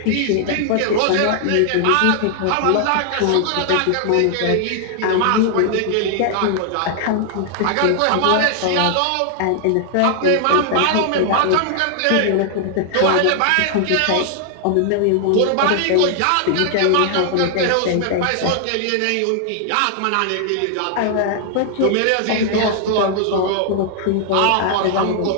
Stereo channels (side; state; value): both; different; correlation 0.00